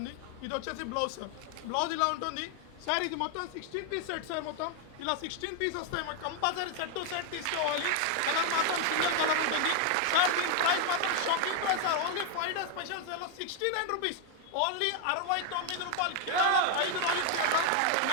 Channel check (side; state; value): both; different; correlation 0.00